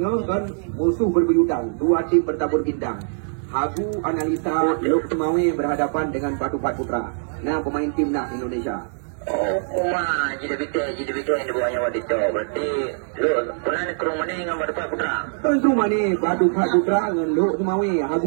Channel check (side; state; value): left; silent; digital silence